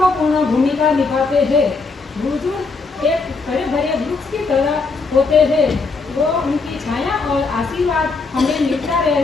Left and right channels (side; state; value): right; quieter; 4.2 dB